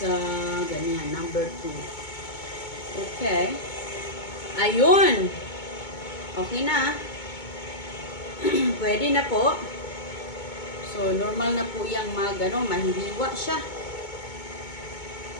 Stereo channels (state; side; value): late; right; 2.2 ms